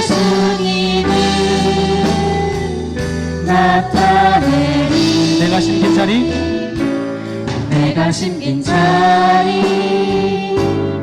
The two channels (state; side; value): identical; both; correlation 1.00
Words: 나타내리. 내가 심긴 자리, 내가 심긴 자리